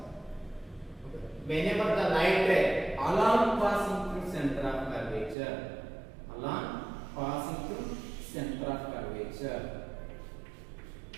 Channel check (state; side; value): drops out; left; at 5.4 s